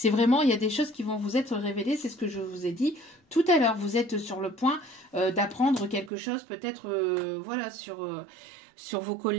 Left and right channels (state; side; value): drops out; left; at 6.1 s